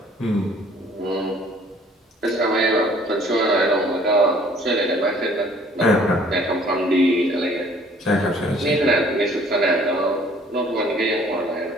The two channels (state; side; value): normal; both; correlation 0.56